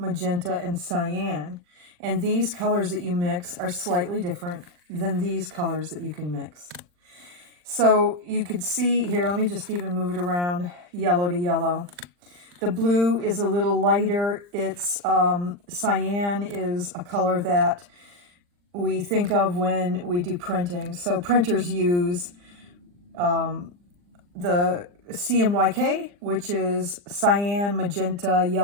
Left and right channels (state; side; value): late; left; 40 ms